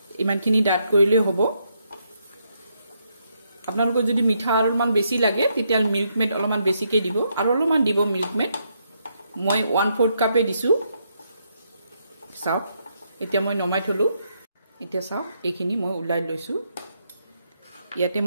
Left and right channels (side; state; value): both; inverted; correlation -0.77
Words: ইমানখিনি ডাট কৰিলে হ'ব আপোনালোকৰ যদি মিঠা অলপমান বেছি লাগে তেতিয়া মিল্ক মেড অলপমান বেছিকে দিব আৰু অলপমান দিব মিল্ক মেড মই 1/4 কাপে দিছো চাও এতিয়া মই নমাই থলো এতিয়া চাও এইখিনি মই উলাই লৈছো ইয়াতে